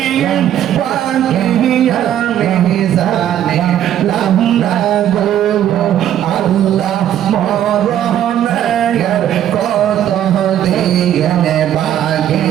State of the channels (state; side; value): quieter; left; 11.0 dB